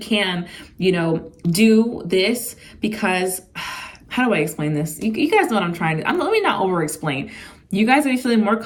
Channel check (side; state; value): both; identical; correlation 1.00